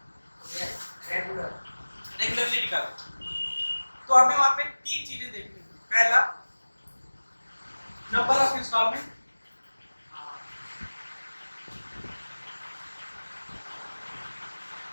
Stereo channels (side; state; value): both; inverted; correlation -1.00